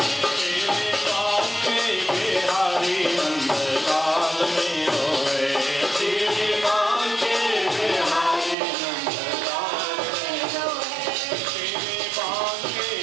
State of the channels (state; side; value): drops out; left; at 8.6 s